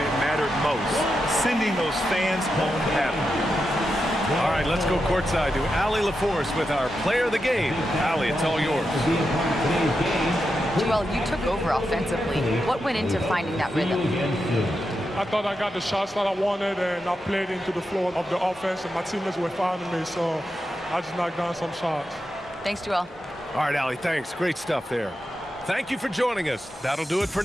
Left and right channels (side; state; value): both; normal; correlation 0.87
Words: it mattered most, sending those fans home happy. All right, let's go courtside to Allie LaForce with our player of the game. Allie, it's all yours. Joel, you took over offensively. What went into finding that rhythm? I thought I got the shots that I wanted, and I played into the flow of the offense, and my teammates were finding me, so I just knocked down some shots. Thanks, Joel. All right, Allie, thanks. Great stuff there. Thank you for joining us. That'll do it for